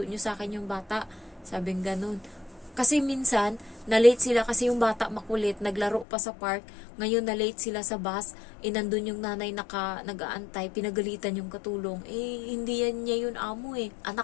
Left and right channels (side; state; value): right; drops out; at 6.1 s